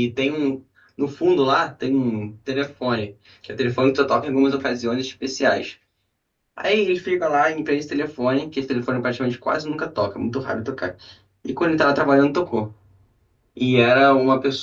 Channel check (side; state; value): both; identical; correlation 1.00